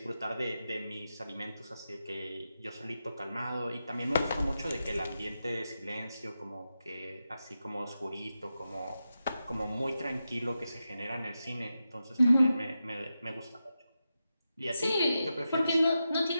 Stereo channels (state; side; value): inverted; both; correlation -0.89